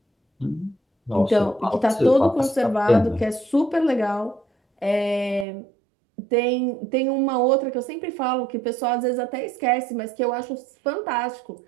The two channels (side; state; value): left; drops out; at 5.5 s